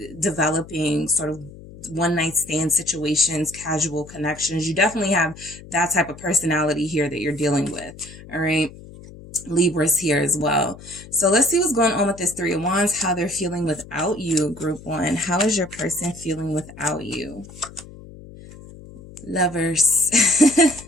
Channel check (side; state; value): left; noise; hum, 17 dB below the sound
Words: developing sort of one night stand situations, casual connections. You definitely have that type of personality here that you're dealing with. All right. Libra's here as well. So let's see what's going on with this 3 of Wands, how they're feeling without you, group 1. How is your person feeling without you? Lovers.